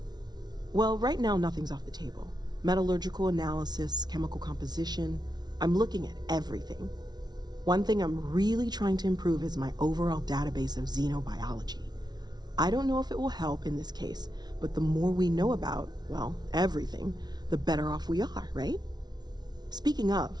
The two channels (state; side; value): late; left; 0.19 ms